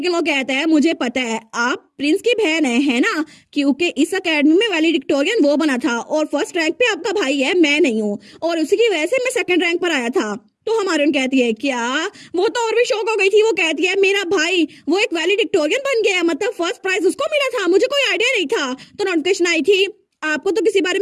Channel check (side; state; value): both; identical; correlation 1.00